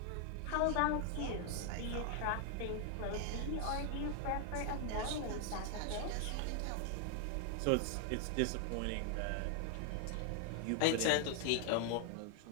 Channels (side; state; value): both; different; correlation 0.00